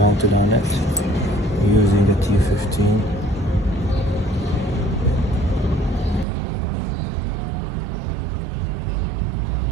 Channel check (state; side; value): drops out; left; at 6.2 s